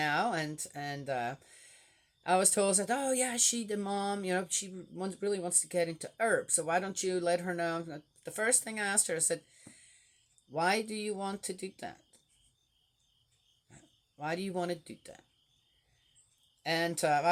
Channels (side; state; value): both; identical; correlation 1.00